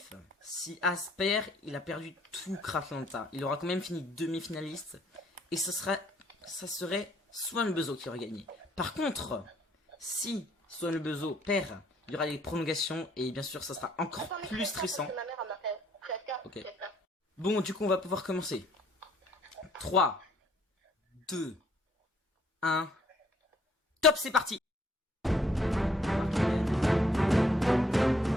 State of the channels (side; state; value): both; normal; correlation 0.64